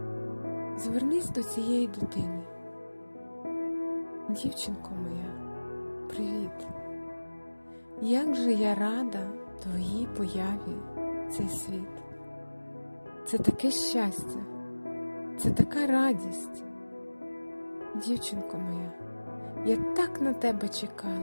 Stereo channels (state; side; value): inverted; both; correlation -1.00